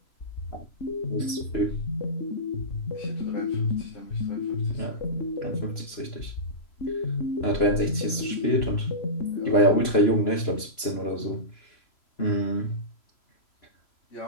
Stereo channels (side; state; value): right; late; 2.9 ms